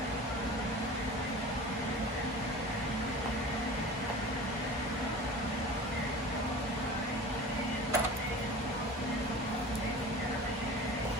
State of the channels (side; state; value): both; normal; correlation 0.37